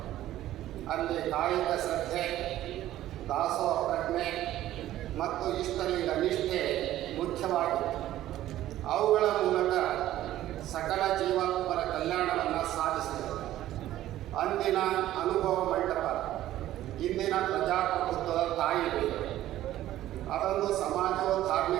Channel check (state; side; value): quieter; left; 13.8 dB